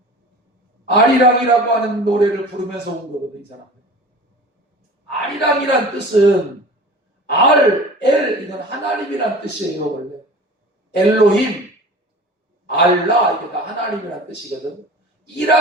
아리랑이라고 하는 노래를 부르면서 온 거거든, 이 사람들. 아리랑이란 뜻은 이건 하나님이란 뜻이에요, 원래. 엘로힘, 알라, 이게 다 하나님이란 뜻이거든.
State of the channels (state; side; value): normal; both; correlation 0.39